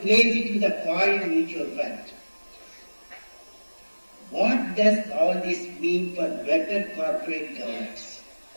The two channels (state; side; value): inverted; both; correlation -1.00